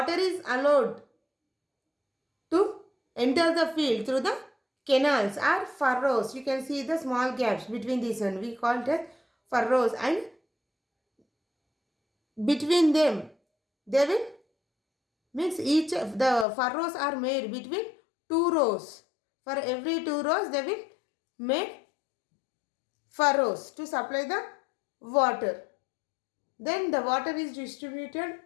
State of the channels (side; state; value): right; drops out; at 16.4 s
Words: is allowed to enter the field through the canals or furrows. You can see the small gaps between these one. We call it as furrows, and between them they will, means each of the furrows are made between two rows. For every two rows they will make furrows to supply the water. Then the water is distributed